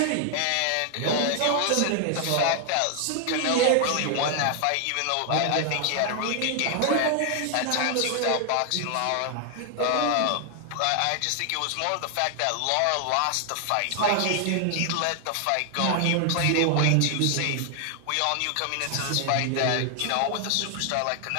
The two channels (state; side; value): different; both; correlation 0.00